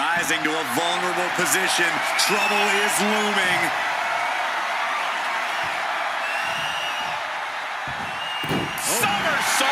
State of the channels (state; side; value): identical; both; correlation 1.00